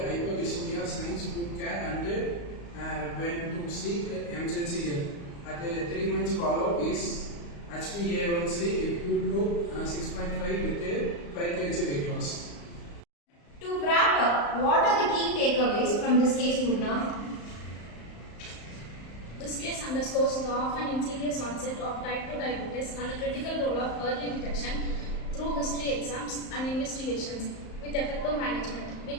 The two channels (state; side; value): late; right; 35 ms